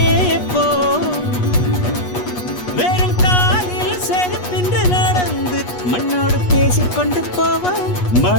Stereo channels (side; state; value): right; late; 8.3 ms